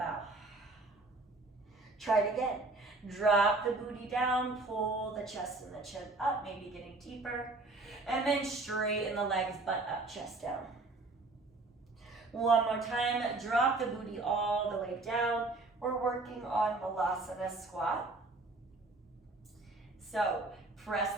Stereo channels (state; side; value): quieter; left; 3.2 dB